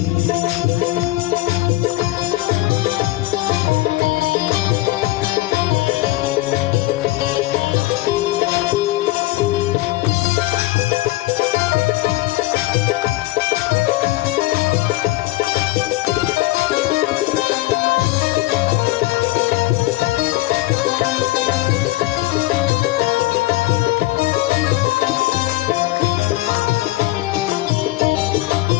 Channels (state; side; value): quieter; right; 18.2 dB